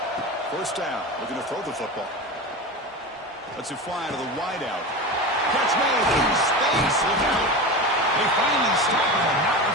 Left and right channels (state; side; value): normal; both; correlation 0.26